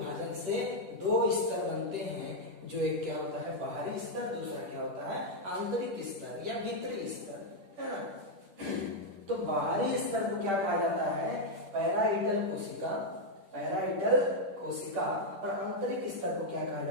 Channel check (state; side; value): late; left; 10 ms